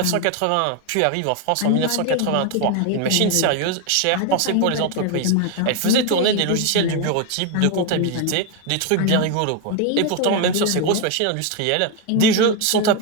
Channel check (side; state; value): both; different; correlation 0.01